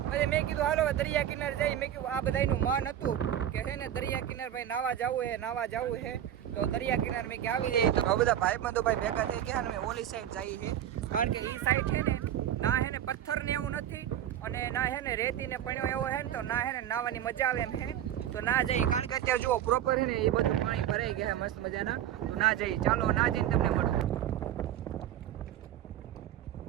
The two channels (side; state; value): left; quieter; 11.0 dB